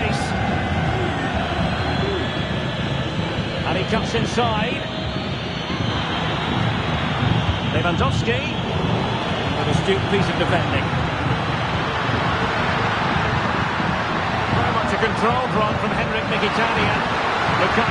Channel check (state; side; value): identical; both; correlation 1.00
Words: And he cuts inside. Lewandowski with a astute piece of defending. Very much a controlled run from Henrik Mkhitaryan.